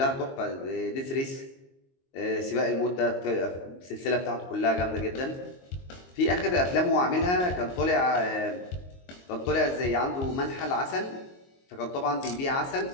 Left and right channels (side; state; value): right; late; 22 ms